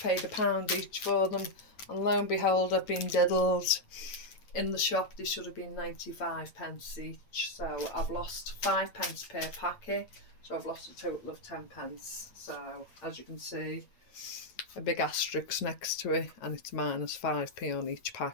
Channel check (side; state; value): right; late; 9.2 ms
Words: £1 each for them, and lo and behold, I've been diddled. In the shop, they should have been 95p each, so I've lost 5p per packet, so I've lost a total of 10p. So as you can see, a big asterisk next to it, and it's minus 5p on each